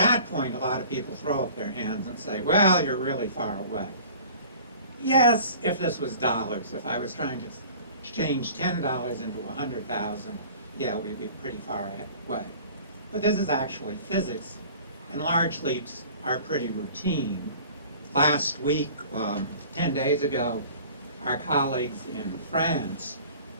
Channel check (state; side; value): inverted; both; correlation -0.46